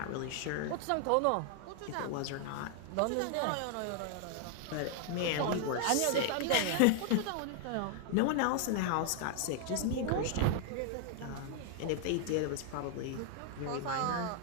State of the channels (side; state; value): both; different; correlation 0.00